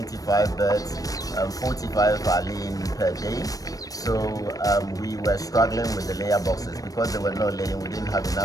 birds. 45 are laying per day. So we were struggling with the layer boxes because they were not laying. We didn't have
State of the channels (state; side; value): late; right; 0.18 ms